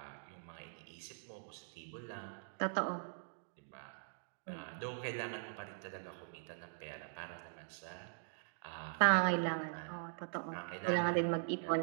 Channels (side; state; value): left; silent; digital silence